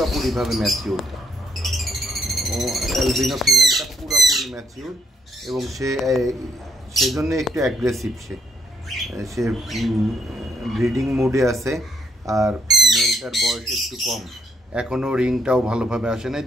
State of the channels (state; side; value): normal; both; correlation 0.72